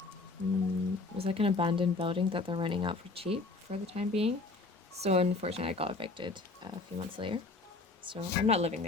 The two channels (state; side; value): quieter; right; 3.6 dB